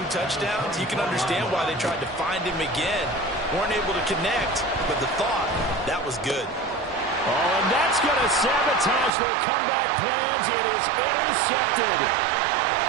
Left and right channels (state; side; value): drops out; left; at 9.1 s